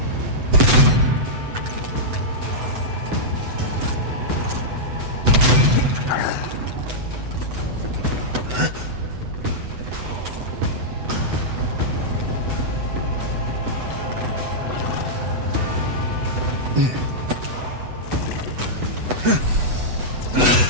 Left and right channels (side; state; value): left; late; 8.0 ms